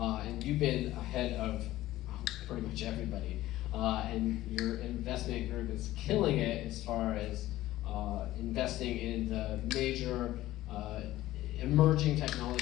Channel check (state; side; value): quieter; right; 15.6 dB